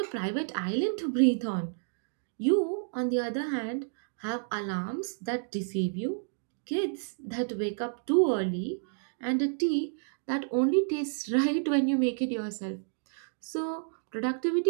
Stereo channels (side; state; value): left; silent; digital silence